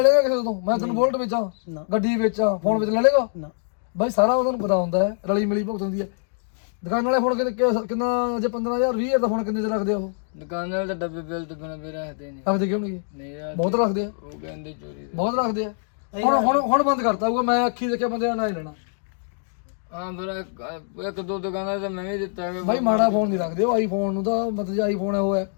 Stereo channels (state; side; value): silent; right; digital silence